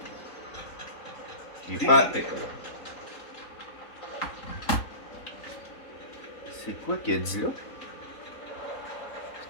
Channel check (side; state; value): right; late; 4.1 ms